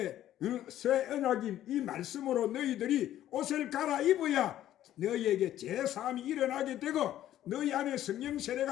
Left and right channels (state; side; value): quieter; right; 12.5 dB